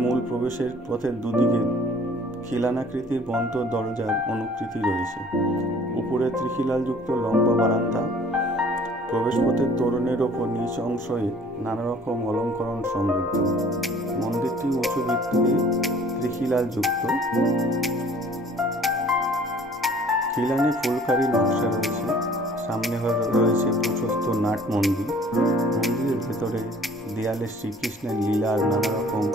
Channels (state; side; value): normal; both; correlation 0.53